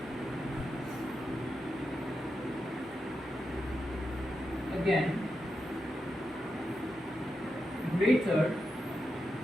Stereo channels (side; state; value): both; normal; correlation 0.87